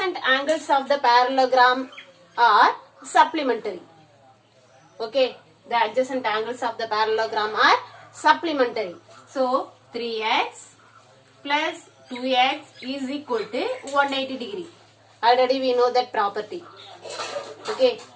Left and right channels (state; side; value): identical; both; correlation 1.00